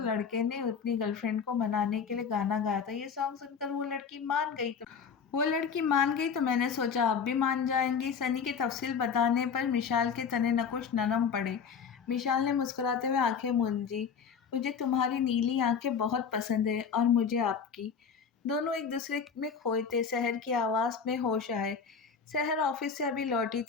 لڑکے نے اپنی گرل فرینڈ کو منانے کے لیے گانا گایا تھا۔ یہ سانگ سن کر وہ لڑکی مان گئی تو میں نے سوچا آپ بھی مان جائیں گی۔ سنی کے تفصیل بتانے پر مشال کے تنے نکش نرم پڑے۔ مشال نے مسکراتے ہوئے آنکھیں مونجھی۔ مجھے تمہاری نیلی آنکھیں بہت پسند ہے اور مجھے آپ کی۔ دونوں ایک دوسرے میں کھوئے تھے۔ سحر کی آواز میں ہوش آئے۔ سحر آفس سے ابھی لوٹی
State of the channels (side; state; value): right; quieter; 6.4 dB